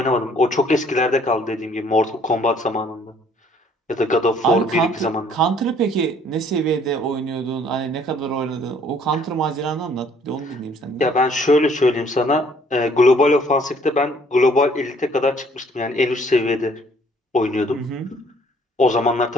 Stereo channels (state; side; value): normal; both; correlation 0.60